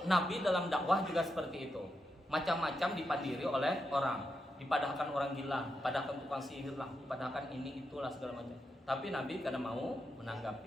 Nabi dalam dakwah juga seperti itu. Macam-macam dipandiri oleh orang. Dipadahkan orang gila, padahkan tukang sihir lah, padahkan ini itulah segala macam. Tapi Nabi kadang mau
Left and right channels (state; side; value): normal; both; correlation 0.85